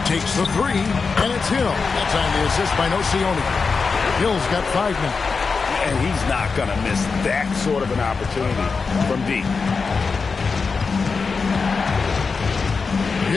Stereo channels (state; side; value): quieter; right; 4.8 dB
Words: Takes the three, and it's Hill. That's on the assist by Nocioni. Hill's got 5 now. And he's not going to miss that sort of an opportunity from deep.